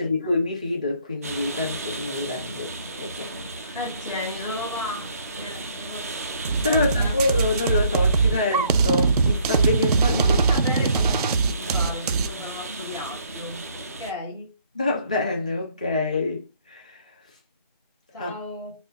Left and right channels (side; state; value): both; inverted; correlation -0.64